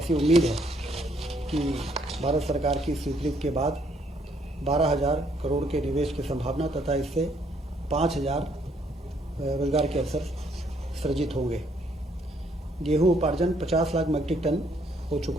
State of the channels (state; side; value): normal; both; correlation 0.68